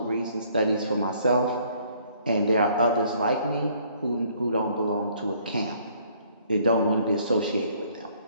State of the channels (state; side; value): inverted; both; correlation -0.62